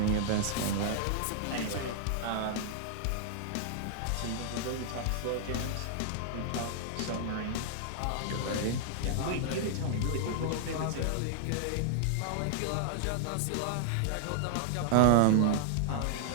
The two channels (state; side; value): different; both; correlation -0.01